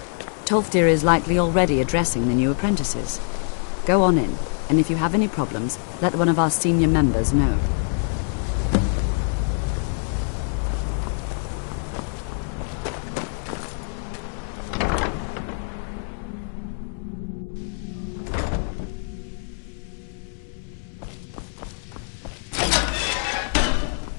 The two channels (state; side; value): silent; right; 61 dB below the other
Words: Tolfdir is likely already addressing the new apprentices. Go on in, and if you have any problems, let one of our senior members know.